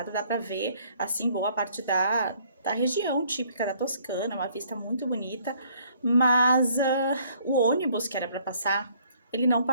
dá para ver, assim, boa parte da região típica da Toscana, uma vista muito bonita, mas o ônibus que era para passar, ele não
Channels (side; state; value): both; inverted; correlation -0.62